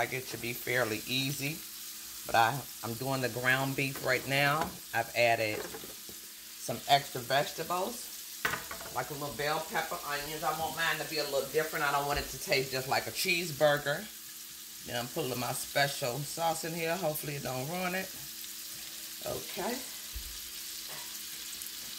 it should be fairly easy. But I'm doing the ground beef right now. I've added some extra vegetables, like a little bell pepper, onions. I want mine to be a little different. I don't want it to taste just like a cheeseburger. Then I'm putting my special sauce in here. Hopefully it don't ruin it. Okay.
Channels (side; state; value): both; identical; correlation 1.00